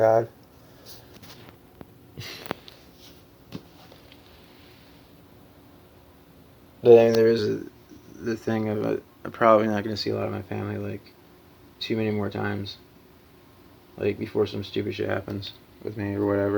But I mean, there is the thing of I'm probably not going to see a lot of my family too many more times. Before some stupid shit happens with me or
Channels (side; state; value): both; identical; correlation 1.00